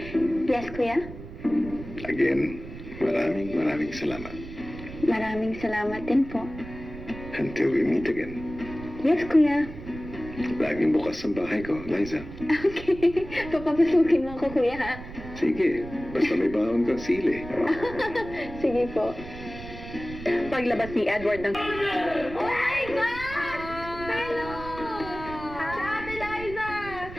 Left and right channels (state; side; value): noise; right; rumble, 13 dB below the sound